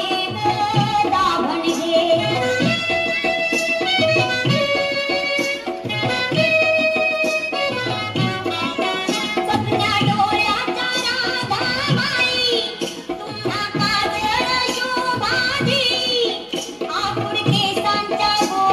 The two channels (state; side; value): identical; both; correlation 1.00